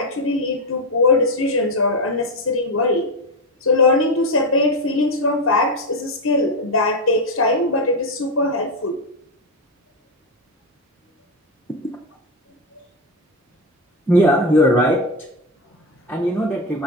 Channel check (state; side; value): normal; both; correlation 0.10